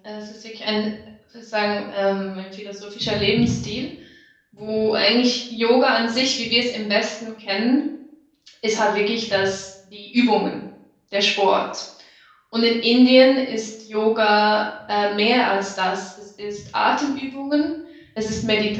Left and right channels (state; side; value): identical; both; correlation 1.00